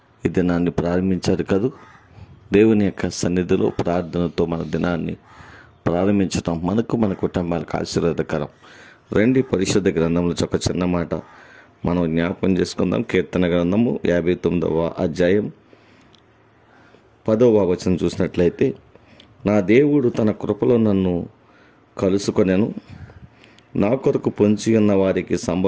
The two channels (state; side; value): identical; both; correlation 1.00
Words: ఈ దినాన్ని ప్రారంభించారు కదూ. దేవుని యొక్క సన్నిధిలో ప్రార్థనతో మన దినాన్ని ప్రారంభించటం మనకు మన కుటుంబాలకు ఆశీర్వాదకరం. రండి, పరిశుద్ధ గ్రంథంలో ఒక చిన్న మాట మనం జ్ఞాపకం చేసుకుందాం. కీర్తన గ్రంథము 59వ అధ్యాయం 10వ వచనం చూసినట్లయితే, నా దేవుడు తన కృపలో నన్ను కలుసుకొనెను, నా కొరకు పొంచి ఉన్న వారికి